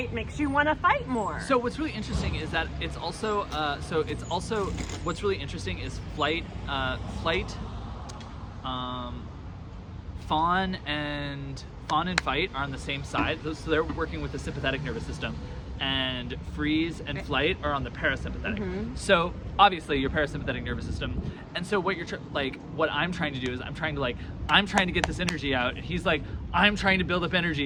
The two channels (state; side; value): identical; both; correlation 1.00